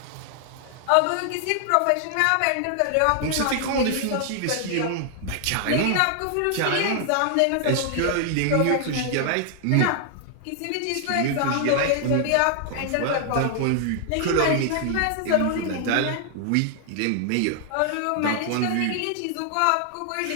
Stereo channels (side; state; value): both; different; correlation 0.00